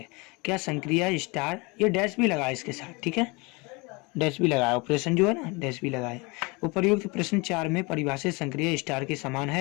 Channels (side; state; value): right; quieter; 27.3 dB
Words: क्या संक्रिया स्टार, ये डैश भी लगाए इसके साथ, ठीक है, डैश भी लगाया, ऑपरेशन जो है ना डैश भी लगाए। उपर्युक्त प्रश्न 4 में परिभाषित संक्रिया स्टार के समान